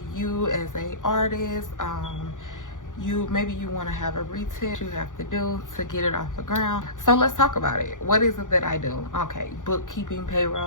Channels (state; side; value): late; right; 0.87 ms